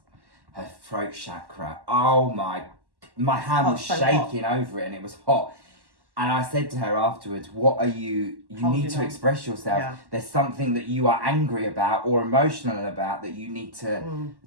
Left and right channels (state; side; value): late; left; 1.1 ms